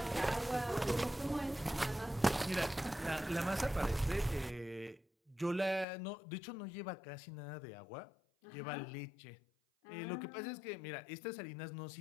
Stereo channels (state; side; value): drops out; right; at 5.9 s